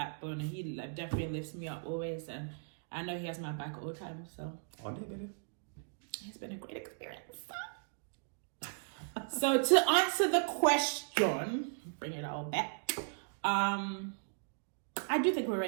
and he like, definitely lifts me up always. And I know he has my back all the time. So it's been a great experience. So to answer the question, bring it all back. I do think we're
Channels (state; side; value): silent; left; digital silence